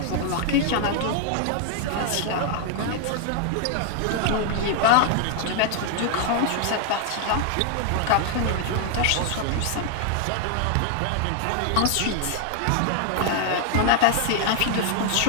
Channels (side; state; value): both; different; correlation 0.00